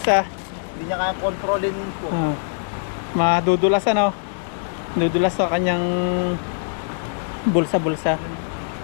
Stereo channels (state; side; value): silent; right; digital silence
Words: hindi niya kaya kontrolin po. Madudulas ano. Dudulas sa kanyang bulsa-bulsa.